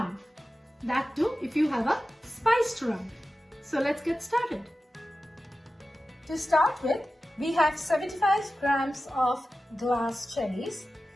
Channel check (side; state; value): both; normal; correlation 0.94